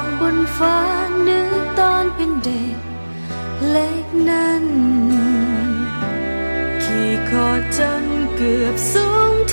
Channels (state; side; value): inverted; both; correlation -1.00